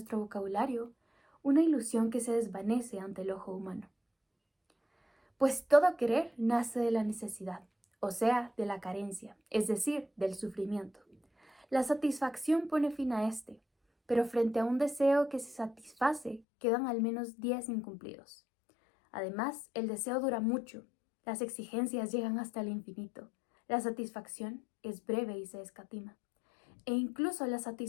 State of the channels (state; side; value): drops out; right; at 16.4 s